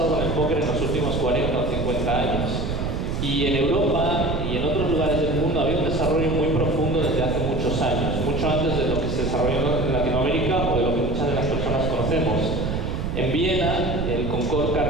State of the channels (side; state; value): right; noise; rumble, 2 dB below the sound